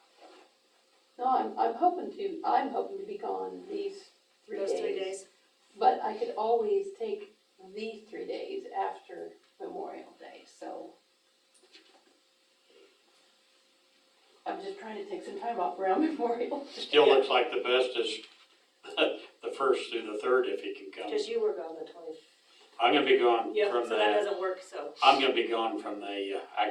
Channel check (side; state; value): both; identical; correlation 1.00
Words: no, I'm hoping to be gone these 3 days. Those 3 days? But I could always take these 3 days after Memorial Day, so. I'm just trying to take some time off around Memorial. Still looks like the best is the first through the third if he can come. Because you were gone the 20th. I'm gonna be gone Yep, from so that the, doesn't work, so. I'm gonna be gone from the,